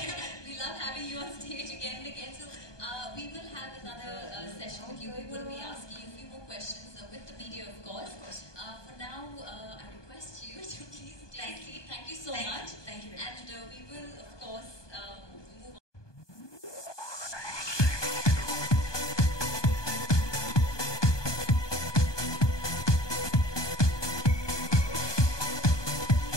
We love having you on stage again and again. So we will have another session with you. We will be asking you a few more questions with the media, of course. For now, I request you to please take a seat. Thank you so much. Thank you very much. And we will, of course, move on.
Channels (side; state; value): right; late; 1.2 ms